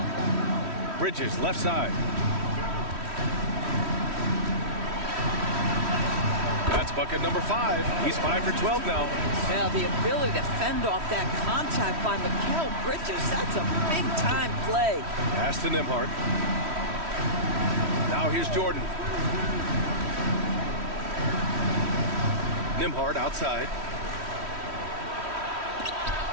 Bridges, left side. That's bucket number 5. He's 5 for 12 now. Yeah, the ability to fend off that contact by Mikal Bridges, that's a big-time play. Pass to Nembhard. Now here's Jordan. Nembhard outside.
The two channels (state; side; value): late; left; 3.1 ms